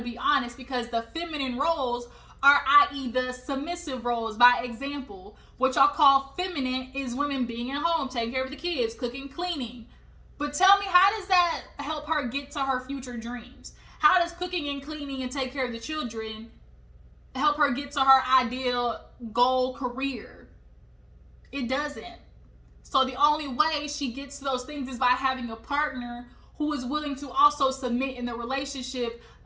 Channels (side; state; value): both; identical; correlation 1.00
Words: be honest, because the feminine roles are, i.e. the submissive roles. By example, what y'all call feminine is women being at home, taking care of the kids, cooking, cleaning. But tell me, how does that help her get to her future dreams? How does cooking and cleaning and take care of the children help her get to her ideal goal career? It doesn't. So the only way she gets to those things is by having a partner who is willing to also submit in the relationship